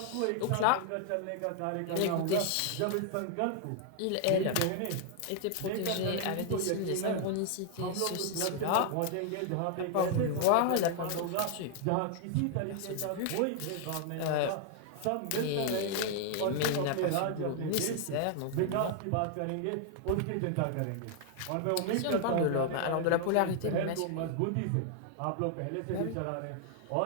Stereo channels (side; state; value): both; different; correlation 0.00